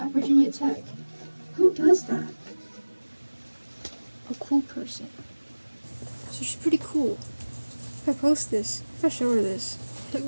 Virginia Tech. Who does that? A cool person. So she's pretty cool. If I post this, if I show her this, like,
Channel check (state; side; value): inverted; both; correlation -1.00